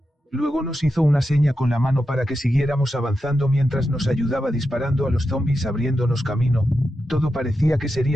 Luego nos hizo una seña con la mano para que siguiéramos avanzando mientras nos ayudaba disparando a los zombies abriéndonos camino. Todo parecía que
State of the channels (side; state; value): both; normal; correlation 0.89